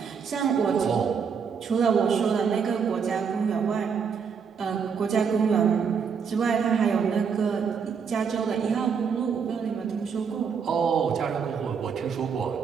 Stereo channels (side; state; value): left; quieter; 6.4 dB